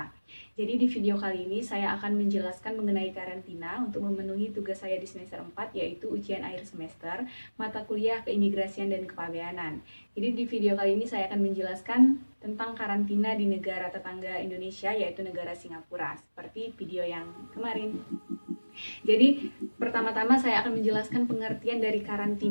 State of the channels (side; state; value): both; inverted; correlation -1.00